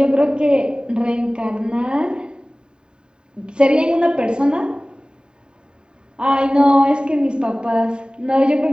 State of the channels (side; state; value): left; late; 0.049 ms